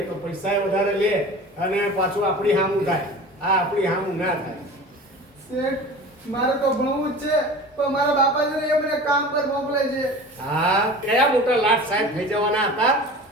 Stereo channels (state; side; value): normal; both; correlation 0.37